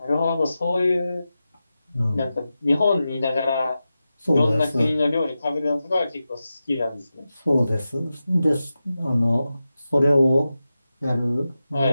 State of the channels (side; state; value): both; inverted; correlation -0.92